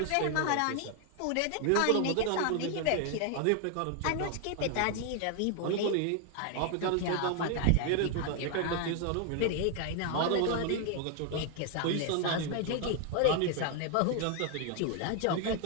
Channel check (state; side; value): different; both; correlation 0.00